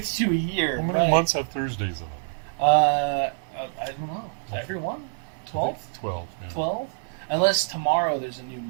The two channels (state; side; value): silent; left; digital silence